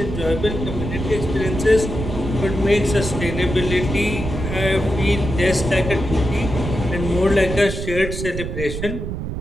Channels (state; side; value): noise; right; rumble, 5 dB below the sound